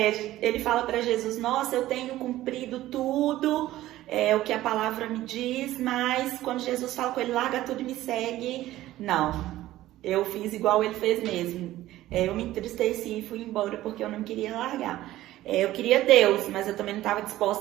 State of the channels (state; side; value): quieter; left; 15.2 dB